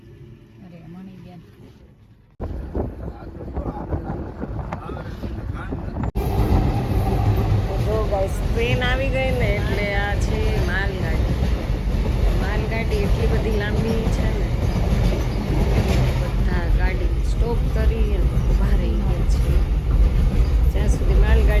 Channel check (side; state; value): both; identical; correlation 1.00